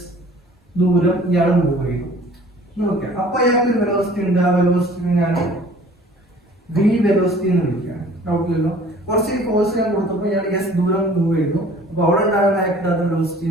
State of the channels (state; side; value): normal; both; correlation 0.50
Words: ദൂരം ഇയാൾ മൂവ് ചെയ്തു. നോക്കാം, അപ്പൊ അയാൾക്ക് ഒരു വെലോസിറ്റി ഉണ്ട്. ആ വെലോസിറ്റി ഞാൻ വി വെലോസിറ്റി എന്ന് വിളിക്കുകയാണ്. ഡൗട്ടില്ലല്ലോ, കുറച്ച് ഫോഴ്സ് ഞാൻ കൊടുത്തപ്പോൾ ഇയാൾ എസ് ദൂരം മൂവ് ചെയ്തു. അപ്പൊ അവിടെ ഉണ്ടാകുന്ന ആക്ട് വെലോസിറ്റി